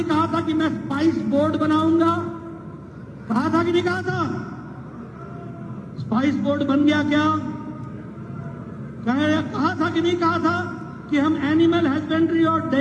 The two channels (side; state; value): both; identical; correlation 1.00